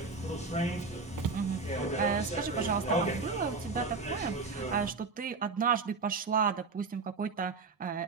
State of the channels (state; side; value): quieter; left; 4.3 dB